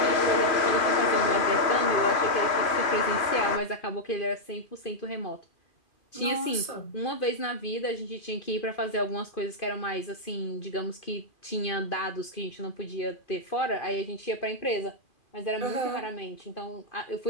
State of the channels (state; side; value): late; right; 2.5 ms